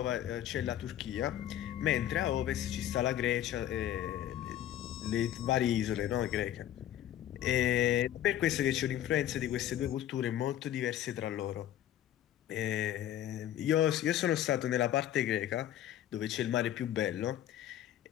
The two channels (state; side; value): quieter; right; 11.8 dB